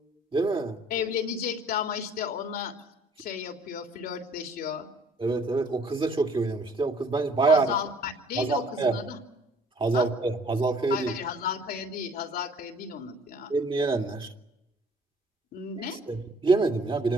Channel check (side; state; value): both; normal; correlation 0.56